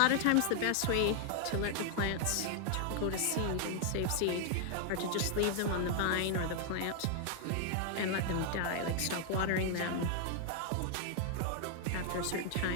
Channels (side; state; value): both; different; correlation 0.00